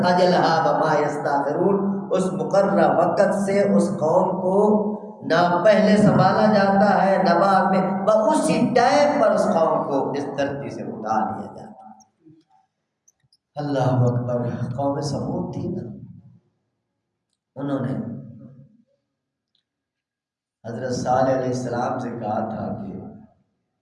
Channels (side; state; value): both; identical; correlation 1.00